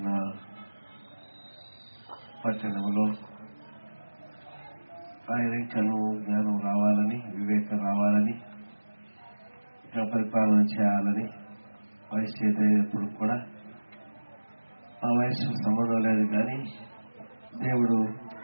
పట్టణంలో ఆయన ఇంకను జ్ఞానం రావాలని, వివేకం రావాలని, ఇంకా పరిపాలన చేయాలని, వయసు చేసేటప్పుడు కూడా ఆ వయసు సంబంధం లేదు, కానీ దేవుడు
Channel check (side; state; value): both; inverted; correlation -1.00